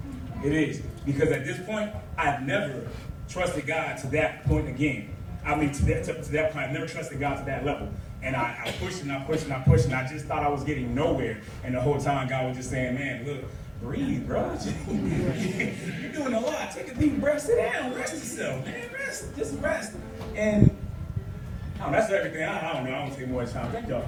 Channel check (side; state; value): both; identical; correlation 1.00